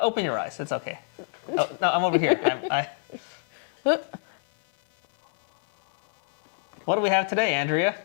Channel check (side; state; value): right; silent; digital silence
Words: Open your eyes. It's okay. Oh, no, I'm over here. What do we have today, Andrea?